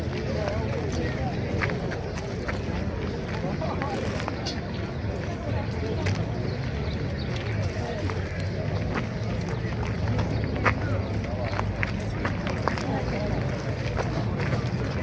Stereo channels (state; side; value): identical; both; correlation 1.00